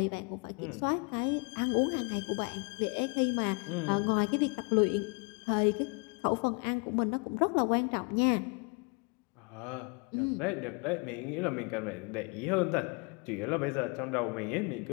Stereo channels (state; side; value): quieter; right; 32.2 dB